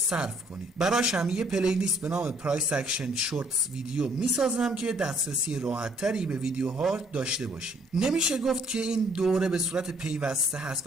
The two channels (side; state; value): both; normal; correlation 0.63